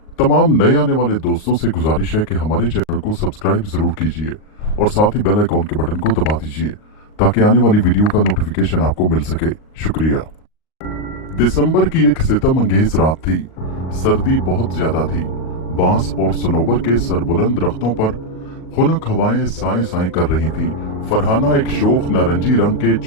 तमाम नए आने वाले दोस्तों से गुजारिश है कि हमारे चैनल को सब्सक्राइब जरूर कीजिए और साथ ही बेल आइकॉन के बटन को दबा दीजिए ताकि आने वाली वीडियो का नोटिफिकेशन आपको मिल सके। शुक्रिया। दिसंबर की एक सितमंगेज रात थी। सर्दी बहुत ज्यादा थी। बांस और सनोबर के सरबुलंद दरख्तों पर खुनक हवाएं साए साए कर रही थी। फरहाना एक शोख नारंगी रंग के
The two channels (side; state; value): right; late; 38 ms